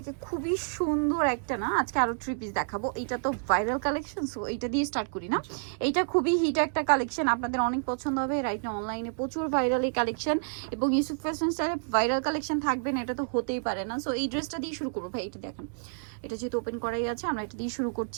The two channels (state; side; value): silent; left; digital silence